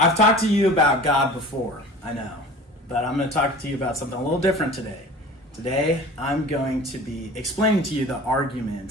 talked to you about God before, I know, but I'm going to talk to you about something a little different today. Today, I'm going to be explaining to you the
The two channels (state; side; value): normal; both; correlation 0.41